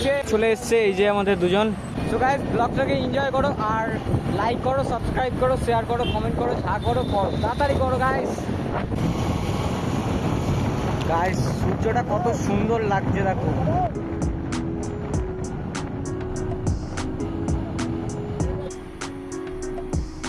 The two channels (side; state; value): both; identical; correlation 1.00